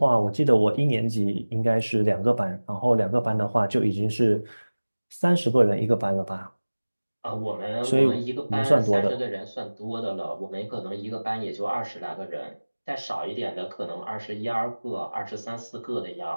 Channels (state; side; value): inverted; both; correlation -1.00